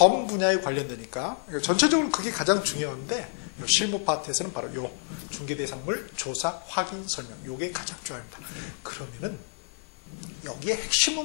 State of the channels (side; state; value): right; silent; digital silence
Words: 분야에 관련되니까 전체적으로 그게 가장 중요한데 실무 파트에서는 바로 요 중개대상물 조사, 확인, 설명 요게 가장 중요합니다. 그러면은 여기에